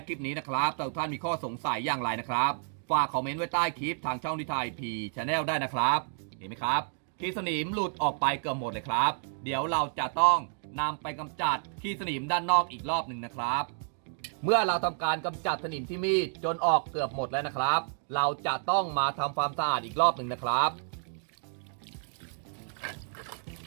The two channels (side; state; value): left; silent; 58 dB below the other